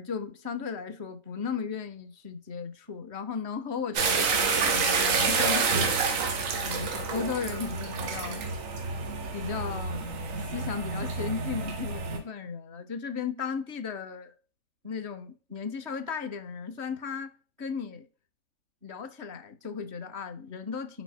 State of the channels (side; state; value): left; late; 3.9 ms